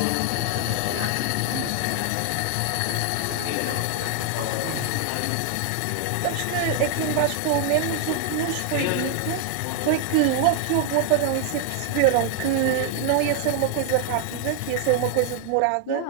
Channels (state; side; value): different; both; correlation 0.00